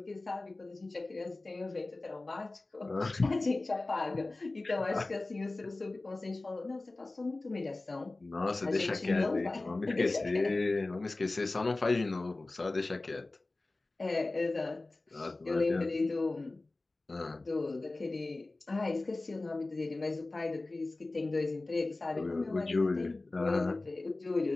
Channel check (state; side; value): quieter; right; 3.1 dB